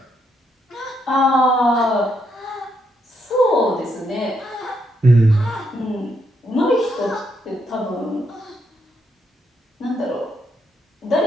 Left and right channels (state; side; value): normal; both; correlation 0.77